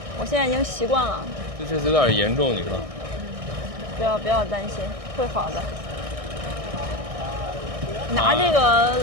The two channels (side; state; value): left; late; 1.6 ms